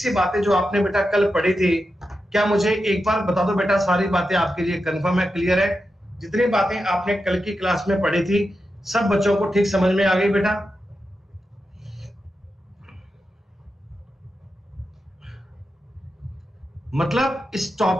बातें जो आपने बेटा कल पढ़ी थी, क्या मुझे एक बार बता दो बेटा, सारी बातें आपके लिए कंफर्म है, क्लियर है? जितनी बातें आपने कल की क्लास में पढ़ी थी सब बच्चों को ठीक समझ में आ गई बेटा? मतलब इस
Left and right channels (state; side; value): normal; both; correlation 0.89